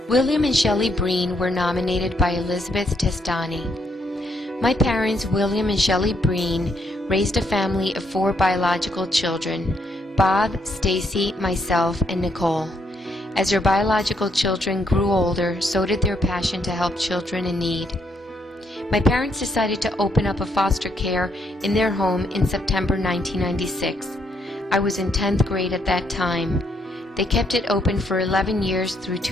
William and Shelley Breen were nominated by Elizabeth Testani. My parents, William and Shelley Breen, raised a family of 4 biological children: Bob, Stacy, myself, and Nicole. As their biological children grew older, so did their passion to help children in need. My parents decided to open up a foster care in their home in September 1996. I was in 10th grade at that time. They kept it open for 11 years through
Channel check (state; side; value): normal; both; correlation 0.74